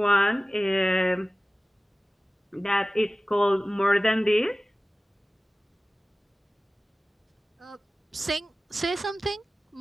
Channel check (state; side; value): normal; both; correlation 0.97